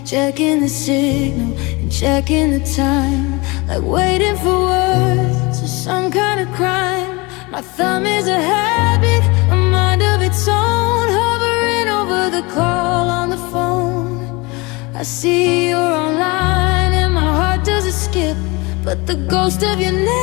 checking the signal and checking the time, like waiting for words or some kind of crime. My thumb is a habit, a mind of its own, hovering over the call on the phone. I see you're online and my heart doesn't skip, but the ghost of your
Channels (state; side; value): quieter; right; 25.6 dB